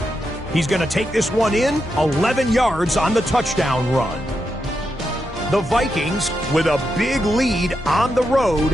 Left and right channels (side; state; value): both; normal; correlation 0.85